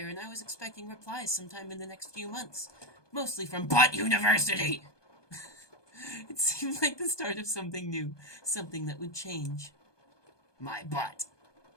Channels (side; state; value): right; late; 1.2 ms